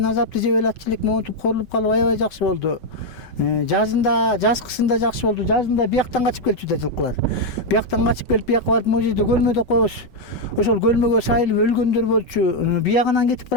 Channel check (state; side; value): late; right; 5.3 ms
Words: азапты жеп эле атчылык монтип корулуп калып аябай жакшы болду. Жазында, жазкысында жакшы болду. Жазында бияктан качып келчү да жылкылар. Бияктан качып келип бияка барып могу жерде көлмөдө кош. Ошол көлмөгө сайылып өлгөндөр болчу. Биягынан кетип